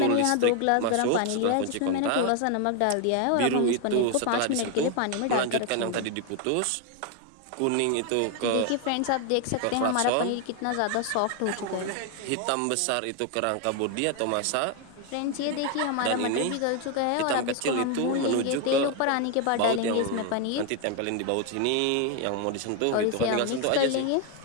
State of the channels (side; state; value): both; different; correlation 0.01